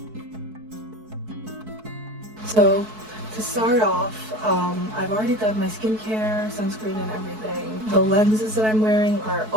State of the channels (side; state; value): left; late; 4.6 ms